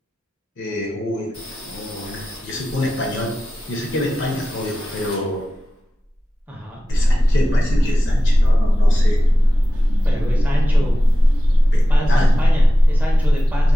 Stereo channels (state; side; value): normal; both; correlation 0.94